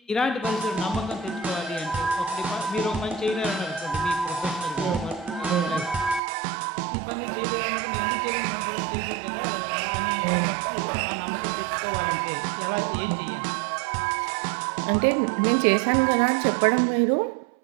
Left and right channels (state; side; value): drops out; left; at 6.2 s